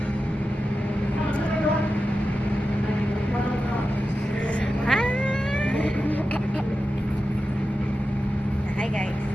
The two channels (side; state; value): both; normal; correlation 0.92